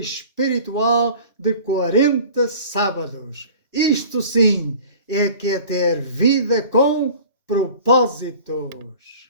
de 40 sábados. Isto sim é que é ter vida com propósitos.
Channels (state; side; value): inverted; both; correlation -0.44